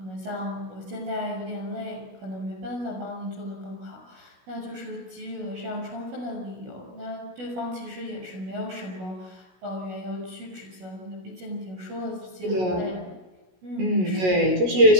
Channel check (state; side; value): late; left; 16 ms